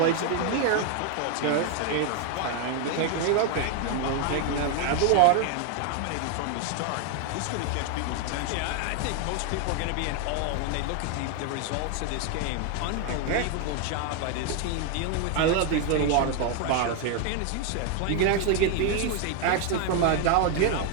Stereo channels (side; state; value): both; different; correlation 0.01